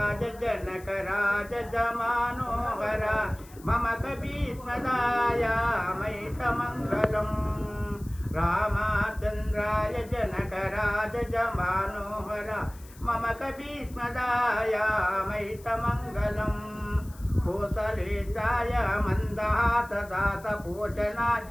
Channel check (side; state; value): left; noise; hiss, 23 dB below the sound